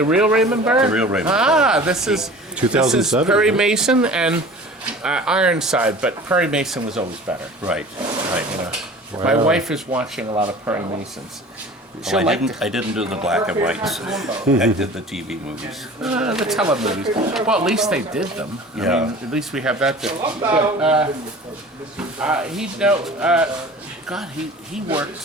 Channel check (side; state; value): both; normal; correlation 0.42